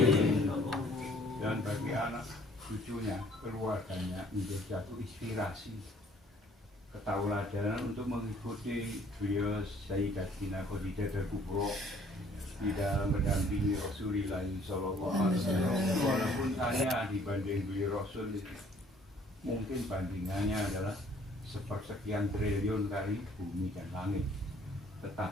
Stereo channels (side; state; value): both; normal; correlation 0.58